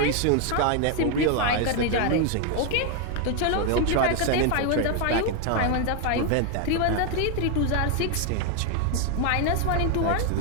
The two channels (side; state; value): both; different; correlation 0.01